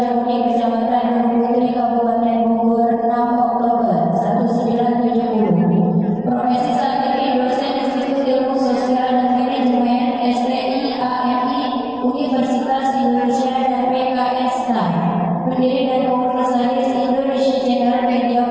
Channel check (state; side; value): noise; right; rumble, 26 dB below the sound